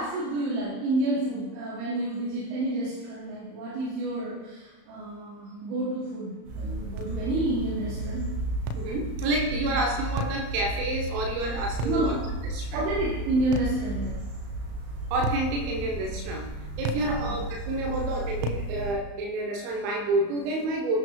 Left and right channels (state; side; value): late; left; 35 ms